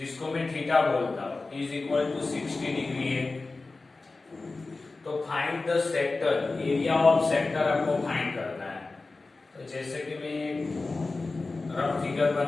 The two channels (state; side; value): quieter; right; 3.6 dB